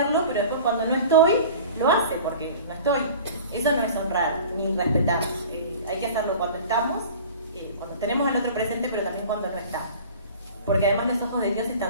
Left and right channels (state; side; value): inverted; both; correlation -0.41